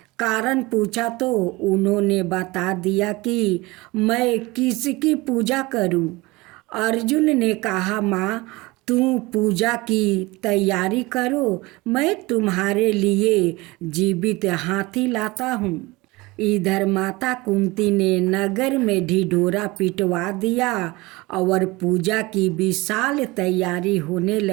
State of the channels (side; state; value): left; quieter; 22.4 dB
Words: कारण पूछा तो उन्होंने बता दिया कि मैं किसकी पूजा करूं। अर्जुन ने कहा, माँ तू पूजा की तैयारी करो, मैं तुम्हारे लिए जीवित हाथी लाता हूँ। इधर माता कुंती ने नगर में ढिढोरा पिटवा दिया और पूजा की विशाल तैयारी होने